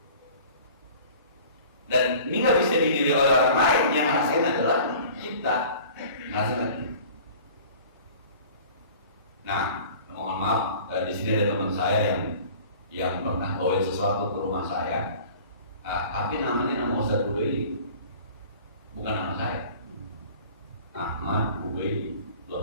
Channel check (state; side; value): inverted; both; correlation -0.45